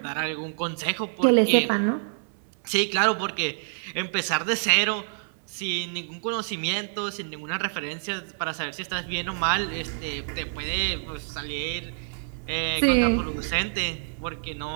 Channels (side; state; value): left; silent; digital silence